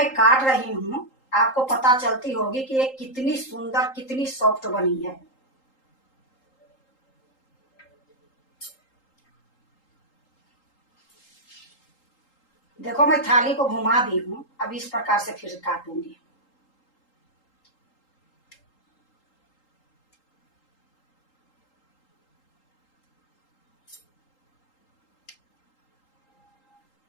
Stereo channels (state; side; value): late; right; 3.8 ms